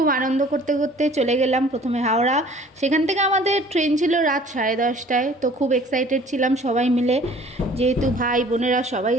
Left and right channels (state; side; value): normal; both; correlation 0.51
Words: আনন্দ করতে করতে চলে গেলাম প্রথমে হাওড়া। সেখান থেকে আমাদের ট্রেন ছিল রাত 10:30টায়। তো খুব এক্সাইটেড ছিলাম সবাই মিলে, যেহেতু ভাই বোনেরা সবাই